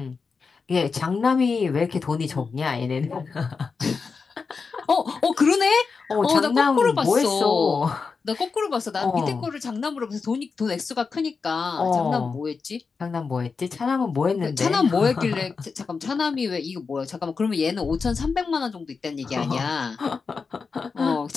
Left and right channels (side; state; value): right; quieter; 5.0 dB